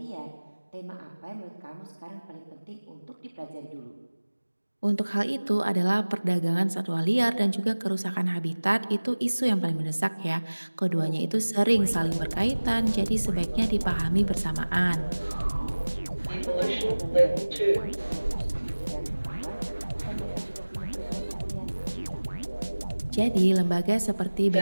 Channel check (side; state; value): both; inverted; correlation -1.00